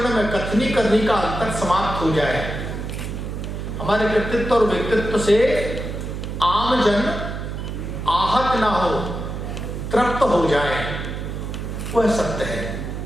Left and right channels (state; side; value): noise; right; hum, 6 dB below the sound